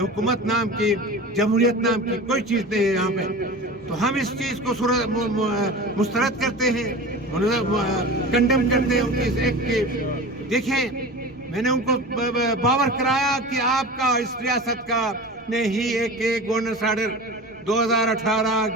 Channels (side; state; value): both; normal; correlation 0.33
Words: نام کی، جمہوریت نام کی کوئی چیز نہیں ہے یہاں پہ۔ تو ہم اس چیز کو مسترد کرتے ہیں، کنڈم کرتے ہیں ان کی اس ایکٹ کی۔ دیکھیں، میں نے ان کو باور کرایا کہ آپ کا اس ریاست کا نے ہی ایک governance order 2018